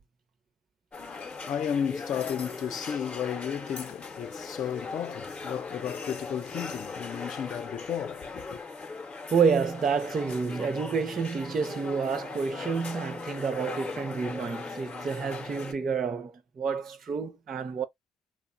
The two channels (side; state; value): both; normal; correlation 0.66